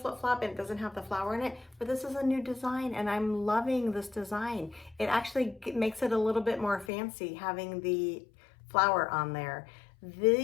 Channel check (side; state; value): right; drops out; at 6.9 s